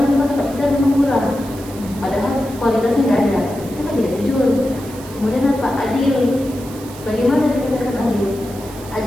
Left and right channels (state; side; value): noise; right; hiss, 18 dB below the sound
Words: kita murah, padahal kualitasnya nggak ada, itu kan tidak jujur. Kemudian apa? Adil. Bagaimana dikatakan adil?